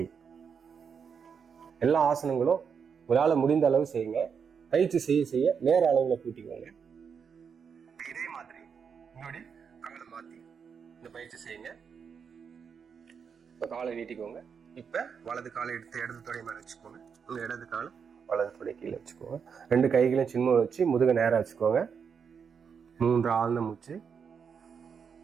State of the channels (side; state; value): left; quieter; 6.6 dB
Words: எல்லா ஆசனங்களும் உங்களால் முடிந்த அளவு செய்யுங்க. பயிற்சி செய்ய செய்ய நேர அளவுல கூட்டிக்கோங்க. இதே மாதிரி உங்களுடைய காலை மாத்தி இந்த பயிற்சி செய்யுங்க. இப்ப காலை நீட்டிக்கோங்க. இப்ப வலது காலை எடுத்து இடது தொடை மேல வச்சுக்கோங்க. உங்க இடது காலை வலது தொடை கீழே வச்சுக்கோங்க. 2 கைகளையும் சின்ன வச்சு முதுக நேரா வச்சுக்கோங்க. 3 ஆழ்ந்த மூச்சு.